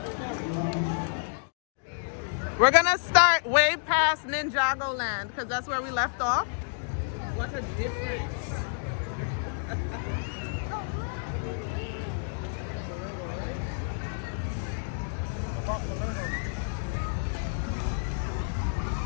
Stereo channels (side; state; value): right; silent; digital silence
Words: We're gonna start way past Ninjago Land because that's where we left off. What a difference.